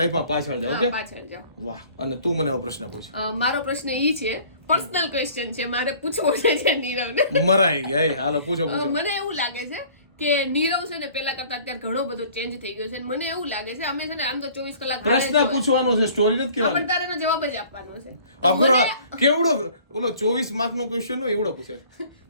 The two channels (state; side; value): inverted; both; correlation -0.51